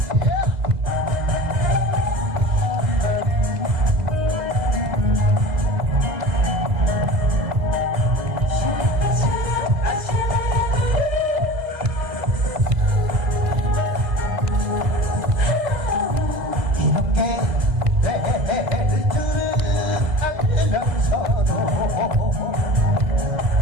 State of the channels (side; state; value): left; late; 2.0 ms